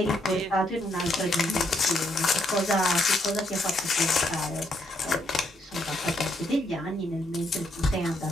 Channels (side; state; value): both; normal; correlation 0.75